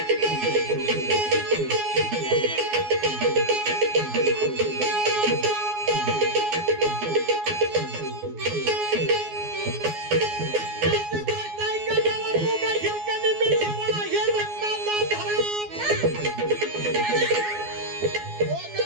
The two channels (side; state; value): left; late; 12 ms